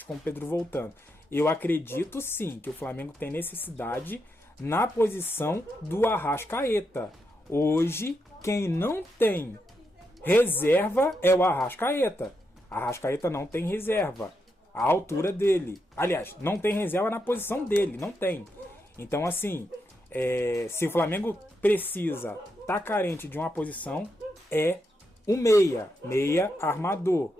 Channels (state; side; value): normal; both; correlation 0.83